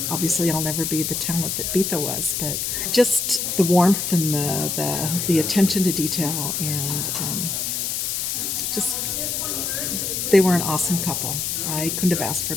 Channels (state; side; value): noise; left; hiss, 1 dB below the sound